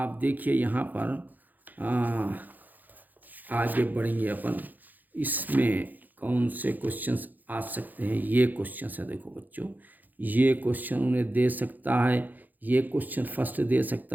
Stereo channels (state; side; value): late; left; 0.084 ms